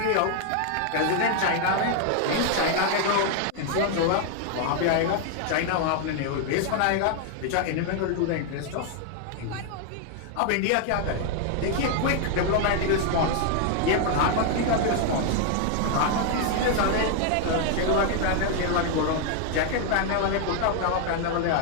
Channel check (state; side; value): different; both; correlation 0.00